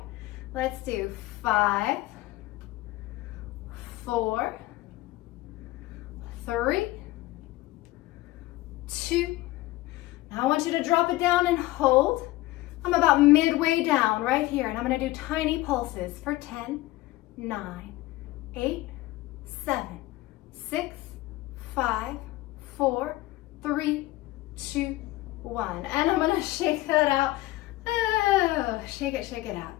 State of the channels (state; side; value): quieter; right; 18.1 dB